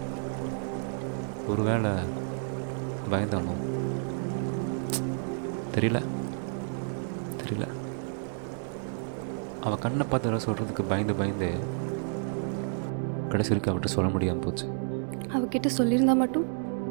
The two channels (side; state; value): left; silent; digital silence